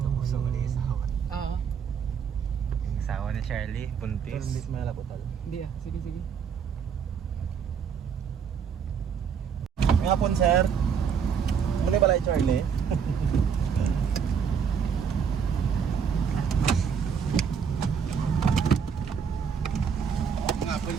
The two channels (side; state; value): left; quieter; 6.9 dB